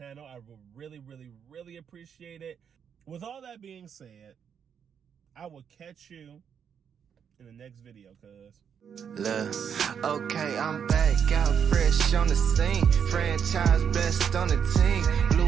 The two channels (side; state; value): left; quieter; 7.6 dB